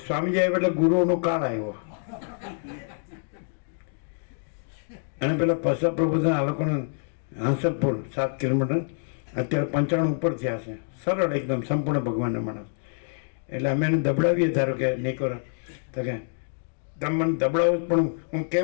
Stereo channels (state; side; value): silent; right; digital silence